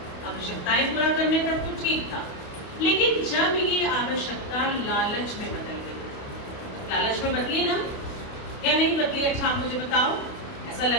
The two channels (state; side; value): late; right; 28 ms